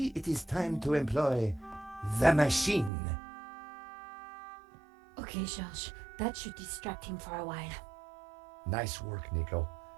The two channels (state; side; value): drops out; left; at 2.9 s